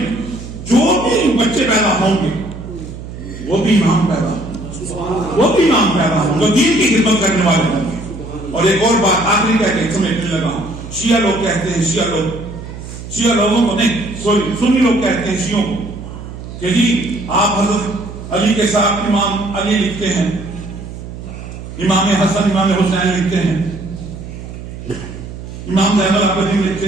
جو بھی بچے پیدا ہوں گے وہ بھی امام پیدا ہوں، وہ بھی امام پیدا ہوں، جو دین کی خدمت کرنے والے ہوں گے۔ اور ایک اور بات آخری کہہ کے سمیٹنے لگا ہوں، شیعہ لوگ کہتے ہیں، شیعہ لوگوں کو نہیں، سوری سنی لوگ کہتے ہیں شیعوں کو کہ جی آپ حضرت علی کے ساتھ امام علی لکھتے ہیں، امام حسن امام حسین لکھتے ہیں، امام زین العابدین لکھتے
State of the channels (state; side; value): noise; right; hum, 11 dB below the sound